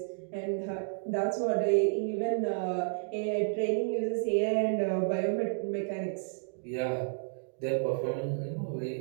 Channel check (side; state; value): left; silent; digital silence